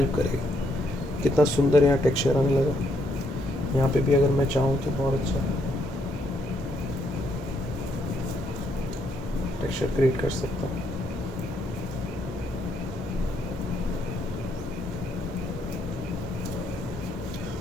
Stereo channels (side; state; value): both; normal; correlation 0.73